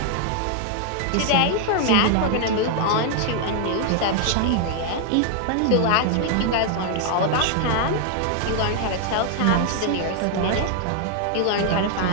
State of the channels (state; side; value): different; both; correlation 0.00